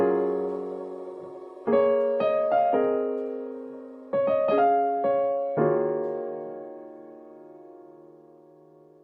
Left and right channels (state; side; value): identical; both; correlation 1.00